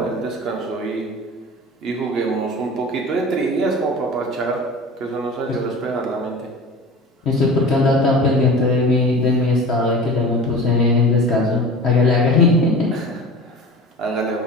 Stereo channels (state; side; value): normal; both; correlation 0.36